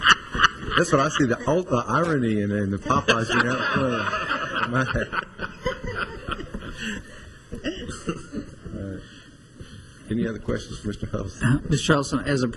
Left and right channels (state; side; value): identical; both; correlation 1.00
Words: That's what I see, the irony in the Popeyes being out front. Any other questions for Mr. Huddleston? Mr. Charleston, as a